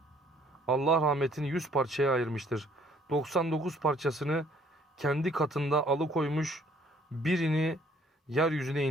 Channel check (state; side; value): normal; both; correlation 0.61